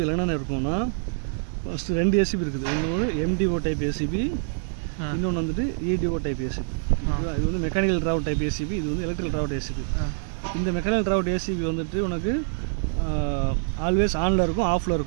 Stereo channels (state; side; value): silent; left; digital silence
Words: என்னென்ன இருக்கும்னா ஃபஸ்ட்டு 2 ஏசிபி இருக்குது. ஒன்று எம்டிஓ டைப் ஏசிபி, இன்னொன்று வந்துட்டு இடிஓ டைப் ஏசிபி. இது வந்து மெக்கானிக்கல் ட்ராவட் டைப் ஏசிபி, இது வந்து எலக்ட்ரிக்கல் ட்ராவட் ஏசிபி. இந்த மெக்கானிக்கல் ட்ராவட் ஏசிபி வந்துட்டு உனக்கு ஆல்வேஸ் ஆனில் இருக்கும், ஆஃபில்